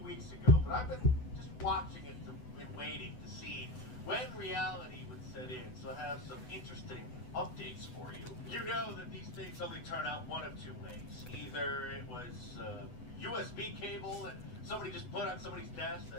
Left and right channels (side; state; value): right; late; 8.0 ms